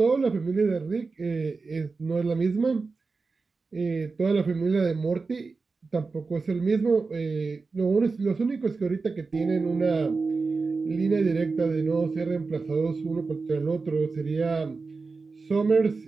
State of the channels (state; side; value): quieter; left; 4.2 dB